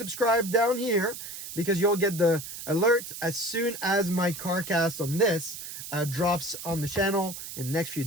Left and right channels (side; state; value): right; noise; hiss, 10 dB below the sound